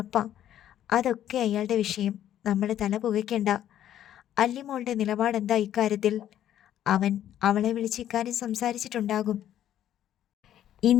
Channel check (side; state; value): right; quieter; 11.3 dB